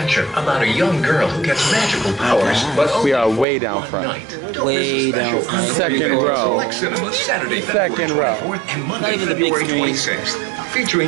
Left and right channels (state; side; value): drops out; left; at 3.5 s